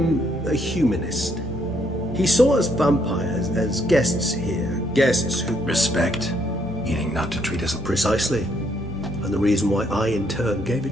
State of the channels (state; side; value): normal; both; correlation 0.71